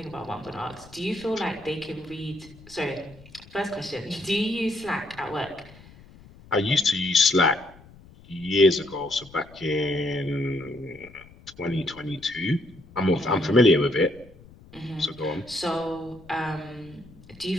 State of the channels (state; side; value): noise; left; rumble, 22 dB below the sound